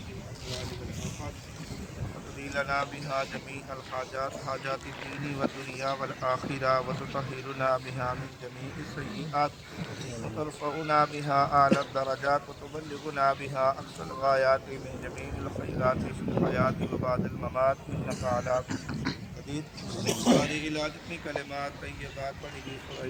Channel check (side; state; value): both; identical; correlation 1.00